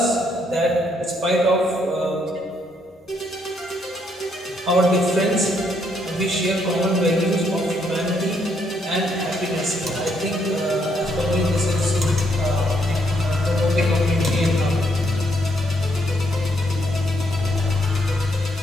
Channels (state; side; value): normal; both; correlation 0.73